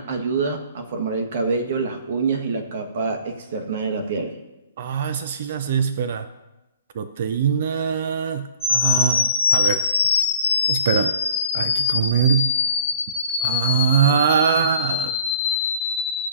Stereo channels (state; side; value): inverted; both; correlation -0.52